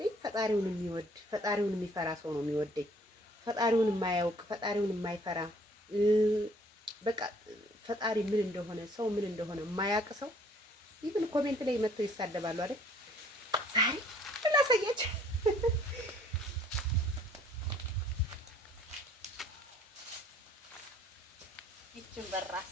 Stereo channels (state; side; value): normal; both; correlation 0.59